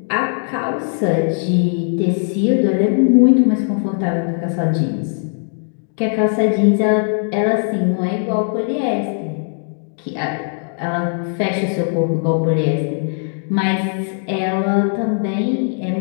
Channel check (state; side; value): silent; right; 67 dB below the other